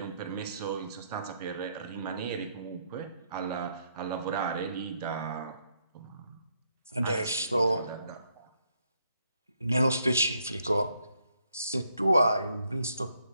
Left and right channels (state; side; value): inverted; both; correlation -0.74